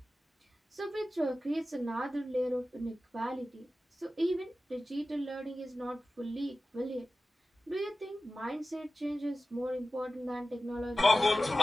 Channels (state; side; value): normal; both; correlation 0.95